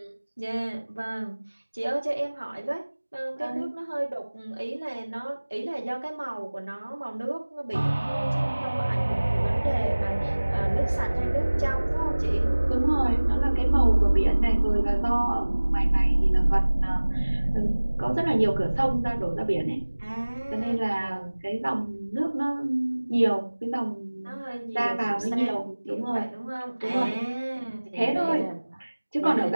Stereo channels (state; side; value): inverted; both; correlation -1.00